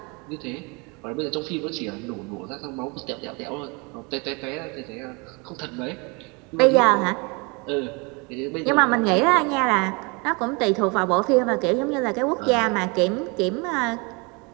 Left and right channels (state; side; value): quieter; left; 29.6 dB